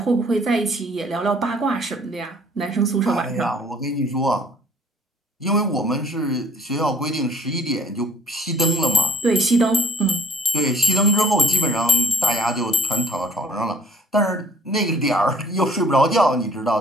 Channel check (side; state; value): both; normal; correlation 0.55